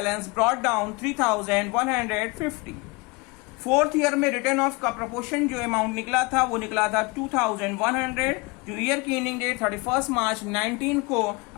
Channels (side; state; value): right; quieter; 26.7 dB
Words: brought down 3,150। Fourth year में रिटर्न ऑफ का प्रोपोर्शन जो अमाउंट निकला था वो निकला था 2,100, जो ईयर की एंडिंग डेट 31 मार्च 19 को